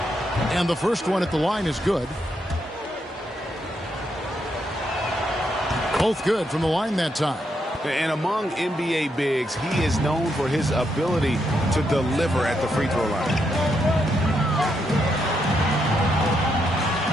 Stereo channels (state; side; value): normal; both; correlation 0.79